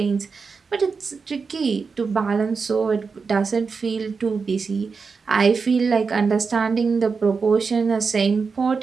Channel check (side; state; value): left; quieter; 5.0 dB